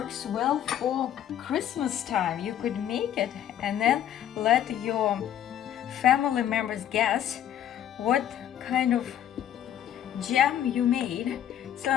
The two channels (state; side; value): quieter; right; 10.6 dB